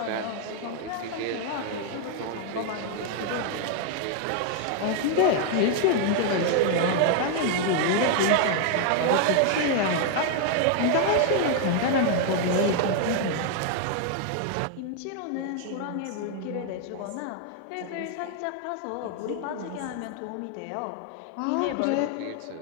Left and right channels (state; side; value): different; both; correlation 0.00